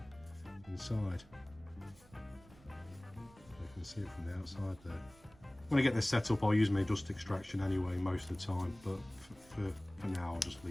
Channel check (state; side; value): noise; right; rumble, 24 dB below the sound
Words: inside. You can see it from the outside there. When I get this set up, I'll use my dust extraction anyway most of the time, but for now I'll just